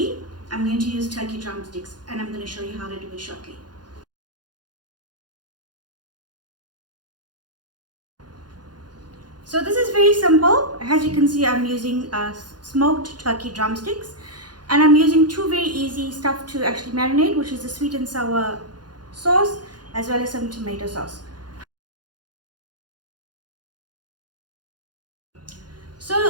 I'm going to use turkey drumsticks, and I'm going to show you how to do it shortly. So this is very simple. As you can see, I'm using smoked turkey drumsticks, and I'm using two very easy stuff to actually marinate, which is the sweet and sour sauce as well as some tomato sauce.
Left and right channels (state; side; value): late; left; 0.70 ms